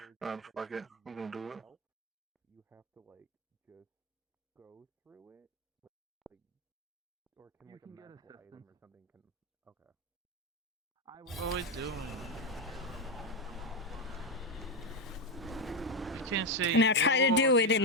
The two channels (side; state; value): both; normal; correlation 0.08